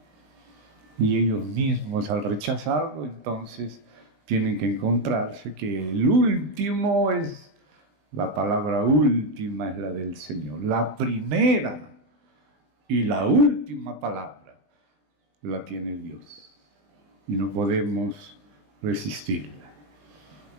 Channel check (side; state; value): left; late; 20 ms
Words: Y ellos mismos, al rechazarlo, entonces tienen que encontrarse que el último es... La palabra última es la del Señor. La primera y la última palabra la tiene Dios. Y no podemos resistirla.